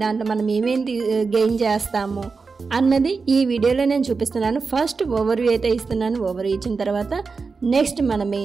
దాంట్లో మనం ఏమేమి గెయిన్ చేస్తాము అన్నది ఈ వీడియోలో నేను చూపిస్తున్నాను. ఫస్ట్ ఓవర్వ్యూ అయితే ఇస్తున్నాను. ఓవర్వ్యూ ఇచ్చిన తర్వాత నెక్స్ట్ మన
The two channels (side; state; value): left; quieter; 4.6 dB